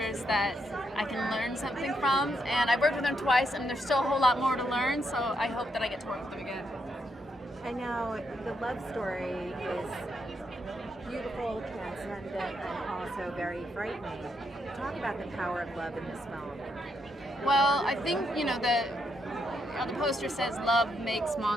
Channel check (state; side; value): normal; both; correlation 0.78